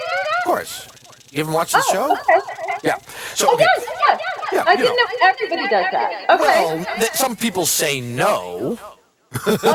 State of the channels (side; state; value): both; identical; correlation 1.00